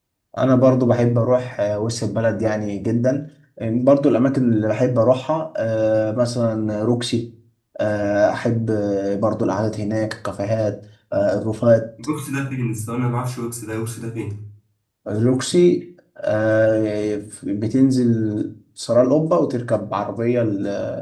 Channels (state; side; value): identical; both; correlation 1.00